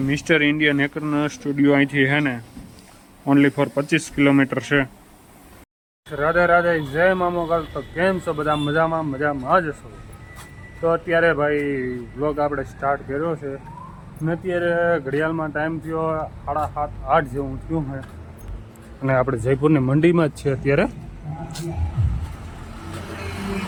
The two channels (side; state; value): both; identical; correlation 1.00